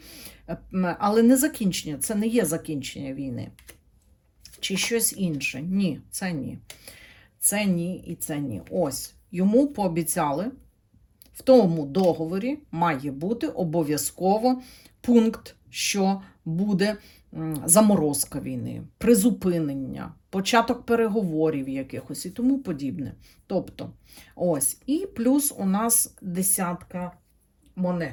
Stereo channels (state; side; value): identical; both; correlation 1.00